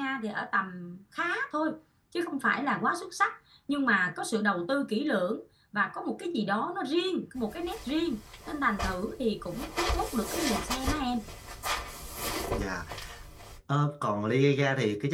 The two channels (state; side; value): identical; both; correlation 1.00